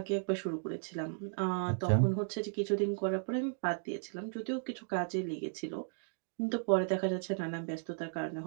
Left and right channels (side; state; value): left; silent; digital silence